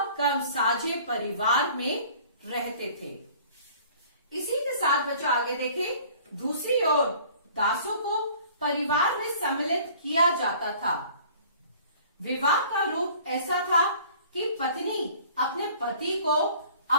कम साझे परिवार में रहते थे। इसी के साथ बच्चों आगे देखें, दूसरी ओर दासों को परिवार में सम्मिलित किया जाता था। विवाह का रूप ऐसा था कि पत्नी अपने पति को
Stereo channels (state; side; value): inverted; both; correlation -0.51